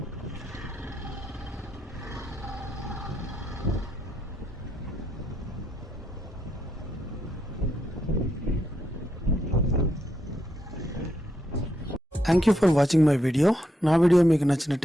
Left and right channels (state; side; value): normal; both; correlation 0.79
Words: Thank you for watching my video. నా వీడియో మీకు